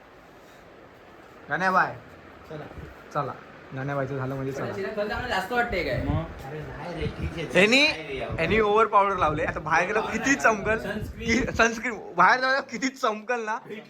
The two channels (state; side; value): identical; both; correlation 1.00